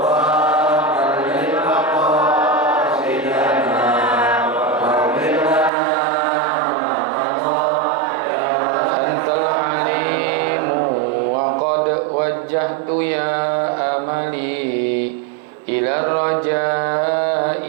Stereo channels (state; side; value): drops out; left; at 5.7 s